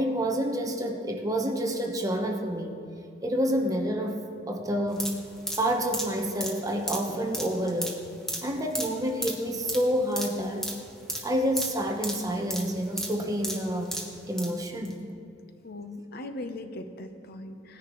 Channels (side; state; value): both; normal; correlation 0.58